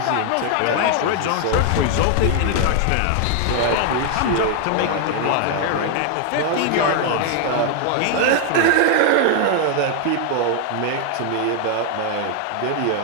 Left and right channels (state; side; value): different; both; correlation 0.00